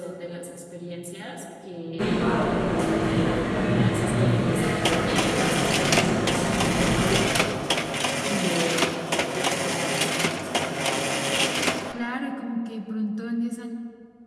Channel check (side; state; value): both; identical; correlation 1.00